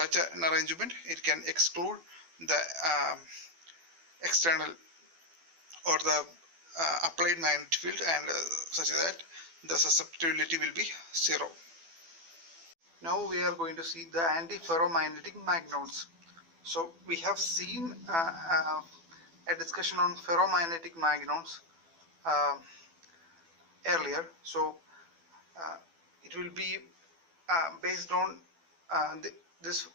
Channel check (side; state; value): left; late; 12 ms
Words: an arrangement it can exclude the external or the applied magnetic field, and such that the susceptibility will be 0. Now we are going to see the antiferromagnetic magnons. So we have seen a discussion on ferromagnetic magnons earlier. So it will be based on this